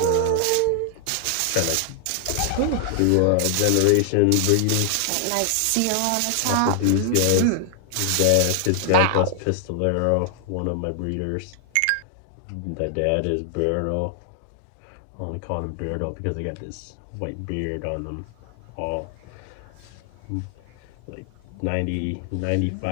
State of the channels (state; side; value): different; both; correlation 0.00